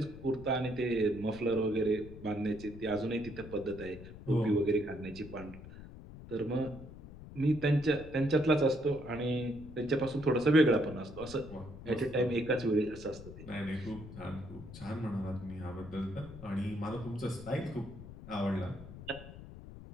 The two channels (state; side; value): noise; left; rumble, 14 dB below the sound